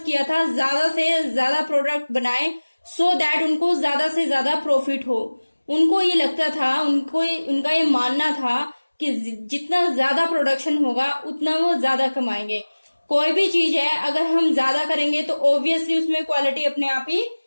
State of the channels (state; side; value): inverted; both; correlation -1.00